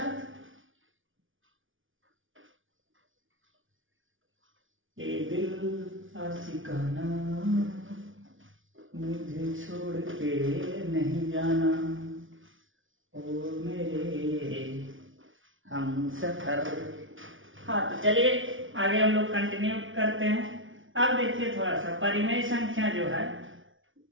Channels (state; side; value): late; left; 0.57 ms